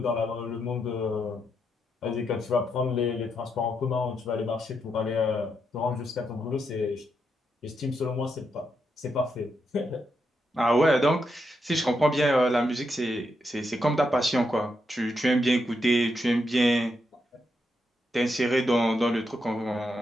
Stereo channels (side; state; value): both; normal; correlation 0.82